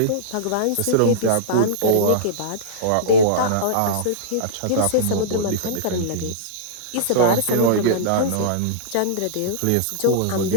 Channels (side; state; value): both; different; correlation -0.03